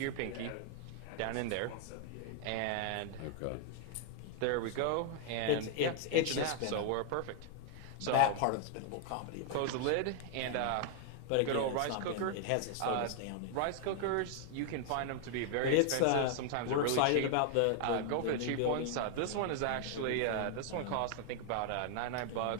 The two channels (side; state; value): both; different; correlation 0.00